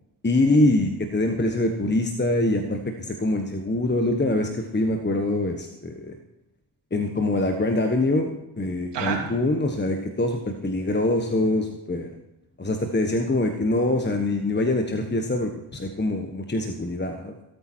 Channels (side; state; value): both; normal; correlation 0.44